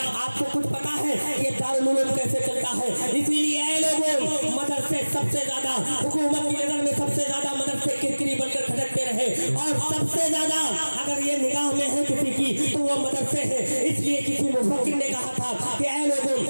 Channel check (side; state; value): both; inverted; correlation -1.00